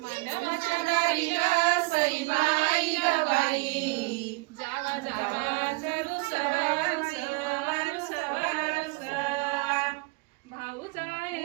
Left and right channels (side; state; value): left; quieter; 27.0 dB